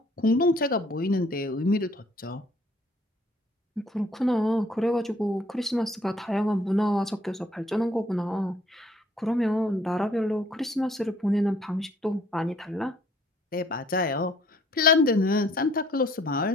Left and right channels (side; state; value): both; normal; correlation 0.61